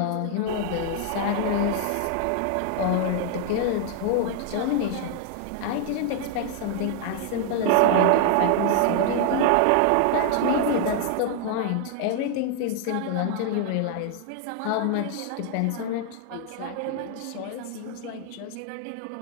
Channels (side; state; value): both; different; correlation 0.00